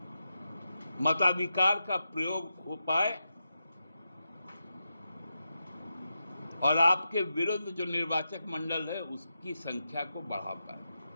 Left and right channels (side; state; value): both; inverted; correlation -0.88